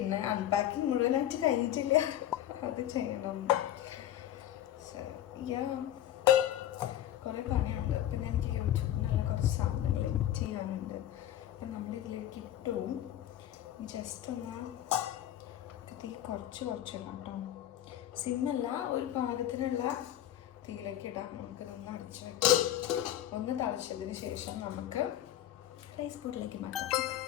അൺപാക്കിങ് മുഴുവനായിട്ട് കഴിഞ്ഞിട്ടില്ല, അത് ചെയ്യണം. കുറേ പണിയുണ്ട്. പിന്നെ എനിക്ക് യൂട്യൂബിൽ നല്ല കുറച്ച് സാധനങ്ങൾ എഡിറ്റ് ചെയ്യാനുണ്ട്. അപ്പം നമ്മളിതിലേക്ക് ഇട്ടു. ജസ്റ്റ് ഒന്ന് തീ കുറച്ചിടാം കേട്ടോ. സിമ്മല്ല, ഒരു പാകത്തിനുള്ള തീയിലേക്ക് ഇടാം. നമുക്കിതൊന്ന് അടിച്ചു വയ്ക്കാം. ഒന്ന് തളിച്ചതിന് ശേഷം നമുക്ക് റൈസ് പോട്ടിലേക്ക് മാറ്റാം.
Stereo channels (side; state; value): right; quieter; 12.2 dB